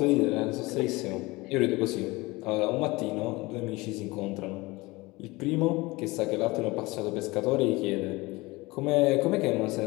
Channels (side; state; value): right; quieter; 22.3 dB